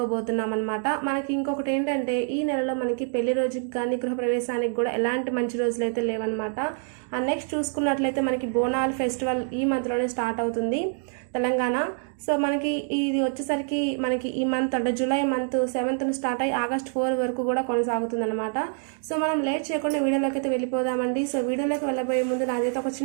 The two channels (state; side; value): silent; left; 56 dB below the other